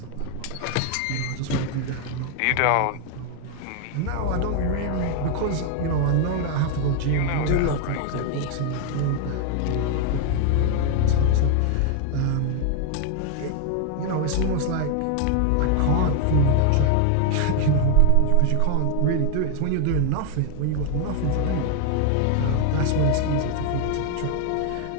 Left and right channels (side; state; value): both; different; correlation 0.00